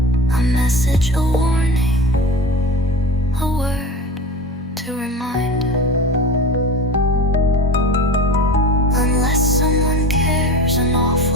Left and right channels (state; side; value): normal; both; correlation 0.32